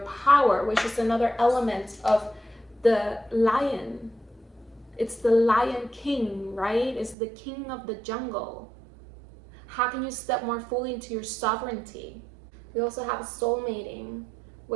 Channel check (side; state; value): left; drops out; at 7.2 s